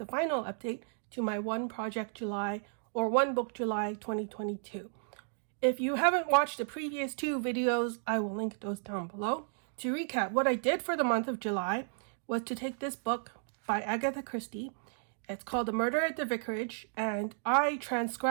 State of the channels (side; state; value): left; silent; digital silence